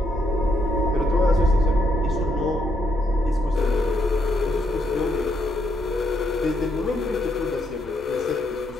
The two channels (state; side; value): normal; both; correlation 0.76